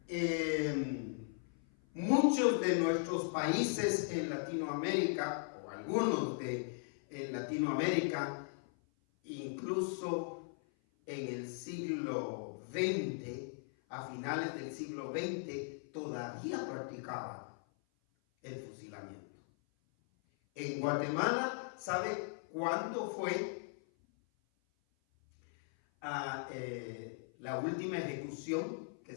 muchos de nuestros países en Latinoamérica, o algunos en Latinoamérica, incluso en el siglo XX, a finales del siglo XX, todavía practicaban el fusilamiento. En Guatemala, ¿sabe cuándo fue la última ejecución que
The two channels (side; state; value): right; silent; 52 dB below the other